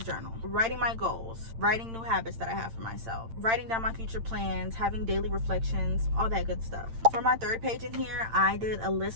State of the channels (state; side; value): late; left; 8.8 ms